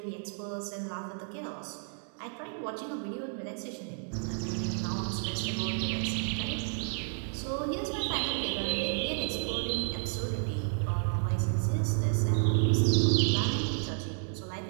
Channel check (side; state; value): left; silent; 57 dB below the other